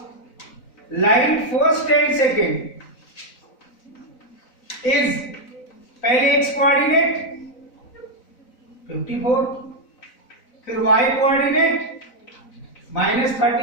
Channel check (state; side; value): late; right; 4.0 ms